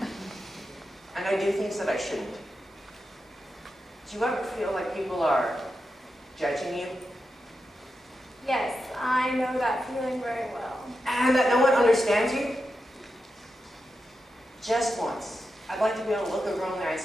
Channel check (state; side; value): normal; both; correlation 0.88